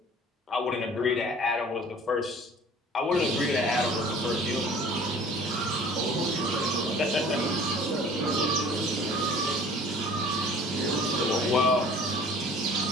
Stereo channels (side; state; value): both; normal; correlation 0.48